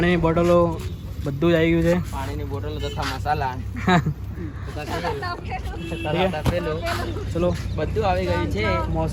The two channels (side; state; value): both; identical; correlation 1.00